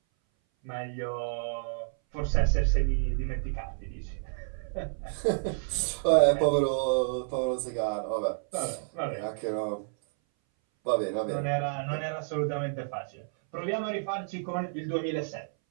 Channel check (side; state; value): left; silent; 58 dB below the other